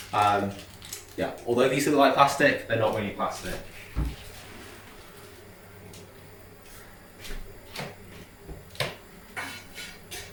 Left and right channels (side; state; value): both; identical; correlation 1.00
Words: yeah, although these look like plastic, they're not really plastic.